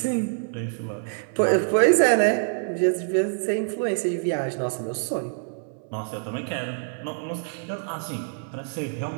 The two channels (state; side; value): silent; left; digital silence